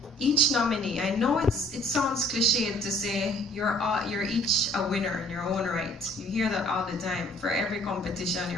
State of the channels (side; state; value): both; normal; correlation 0.57